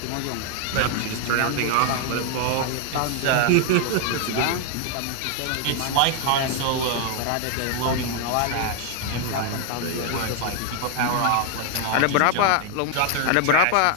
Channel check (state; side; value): different; both; correlation 0.00